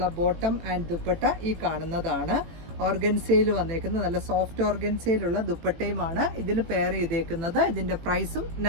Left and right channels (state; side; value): late; left; 18 ms